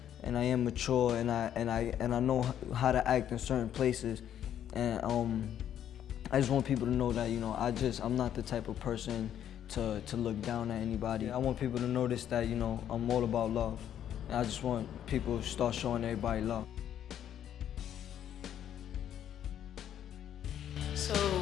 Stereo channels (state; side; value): quieter; right; 10.2 dB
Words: and I am mature, and I know how to act in certain places, and I just want people to know that I'm not the type of person to look down at anybody. I want people to notice that I'm all about love, and I just want people to start showing everybody love. So